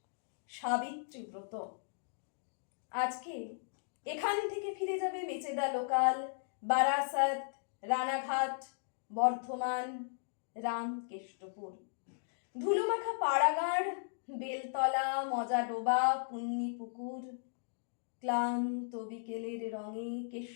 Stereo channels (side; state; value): right; silent; digital silence